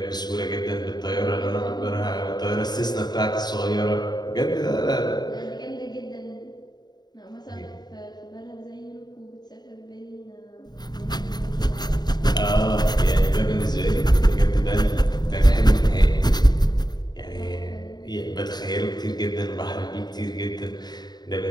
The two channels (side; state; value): right; late; 0.20 ms